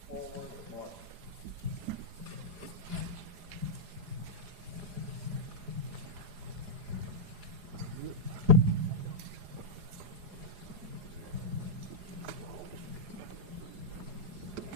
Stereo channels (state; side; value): late; left; 4.9 ms